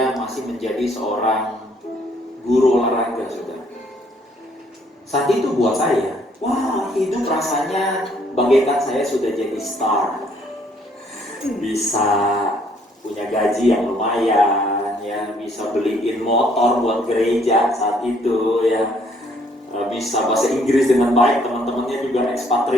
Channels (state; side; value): normal; both; correlation 0.65